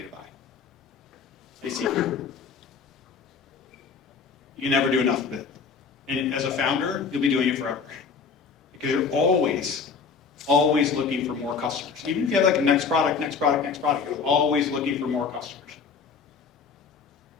to buy? I see. You can never do enough of it. And as a founder, you'll be doing it forever. Because you're always looking for more customers. Even if you have like a next product, you're always looking for more customers.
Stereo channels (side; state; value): right; quieter; 5.6 dB